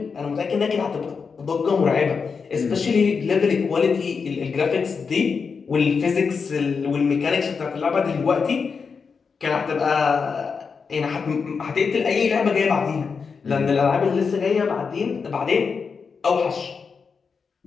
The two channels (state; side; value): quieter; right; 5.4 dB